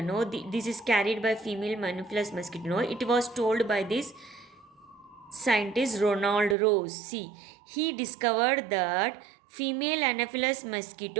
No, this is carried by female Anopheles mosquito. No, it was told by this scientist Ronald Rose. See, he discovered that female Anopheles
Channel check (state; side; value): drops out; left; at 6.6 s